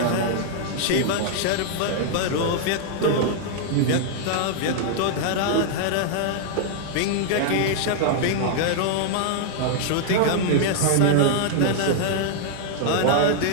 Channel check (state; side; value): different; both; correlation -0.01